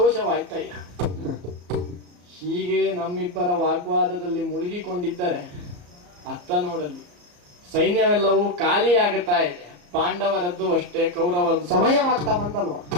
ಹೀಗೆ ನಮ್ಮಿಬ್ಬರ ವಾಗ್ವಾದದಲ್ಲಿ ಮುಳುಗಿಕೊಂಡಿದ್ದರೆ ಅತ್ತ ನೋಡಲಿ ಸೈನ್ಯವೆಲ್ಲವೂ ಖಾಲಿಯಾಗುತ್ತಾ ಇದೆ. ಪಾಂಡವರದ್ದು ಅಷ್ಟೇ, ಕೌರವರದ್ದು ಸಮಯವಾಗ್ತಾ ಬಂತಲ್ವಾ?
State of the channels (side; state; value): left; late; 34 ms